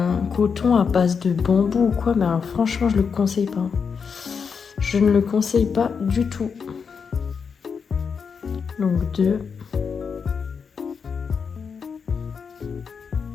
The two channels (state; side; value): quieter; right; 6.0 dB